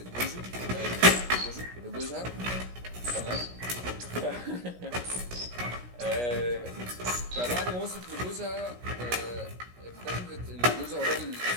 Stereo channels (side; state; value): left; late; 17 ms